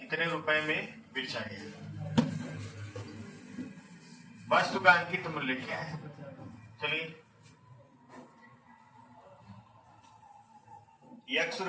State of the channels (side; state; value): both; identical; correlation 1.00